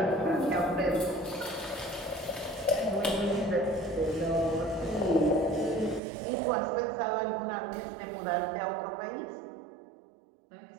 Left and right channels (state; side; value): drops out; left; at 6.0 s